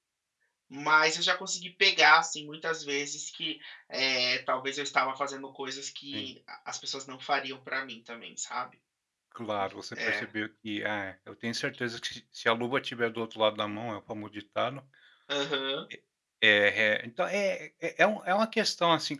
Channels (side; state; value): both; identical; correlation 1.00